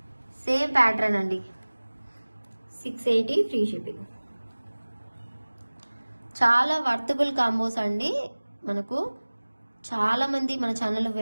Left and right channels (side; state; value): both; inverted; correlation -1.00